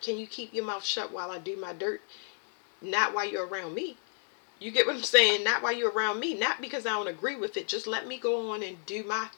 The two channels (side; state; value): right; silent; 57 dB below the other